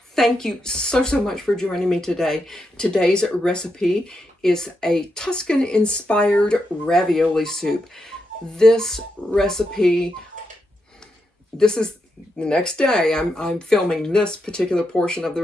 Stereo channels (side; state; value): both; normal; correlation 0.84